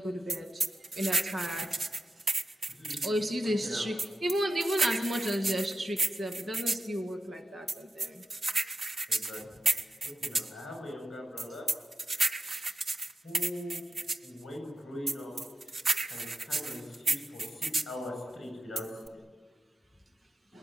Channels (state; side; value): normal; both; correlation 0.91